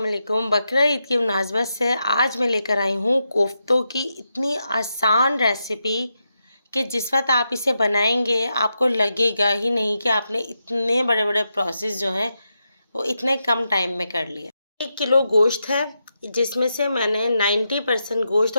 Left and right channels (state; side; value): inverted; both; correlation -0.86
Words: वालेकुम। बकरा ईद की मुनासबत से आज मैं लेकर आई हूँ कोफ्तों की इतनी आसान रेसिपी कि जिस वक्त आप इसे बनाएंगे आपको लगेगा ही नहीं कि आपने इतने बड़े बड़े प्रोसेस जो हैं वो इतने कम टाइम में कर लिए। 1 किलो गोश्त है जिसमें से मैंने 90% गोश्त